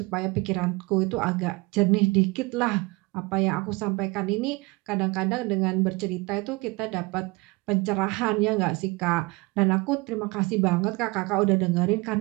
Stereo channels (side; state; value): left; quieter; 24.6 dB